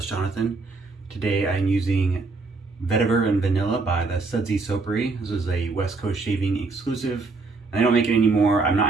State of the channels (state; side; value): quieter; left; 3.9 dB